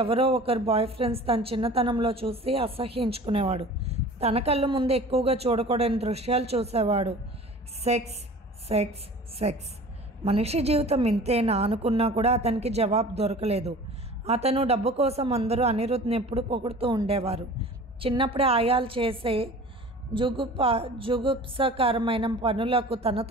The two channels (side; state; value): both; normal; correlation 0.42